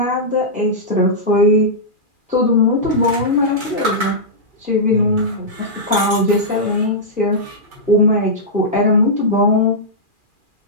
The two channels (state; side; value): late; left; 2.4 ms